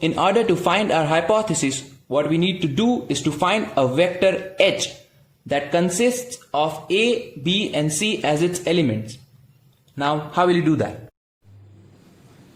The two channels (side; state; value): both; identical; correlation 1.00